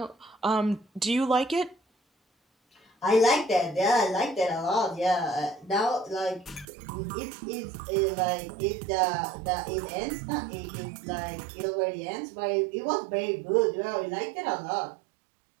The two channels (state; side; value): drops out; left; at 6.7 s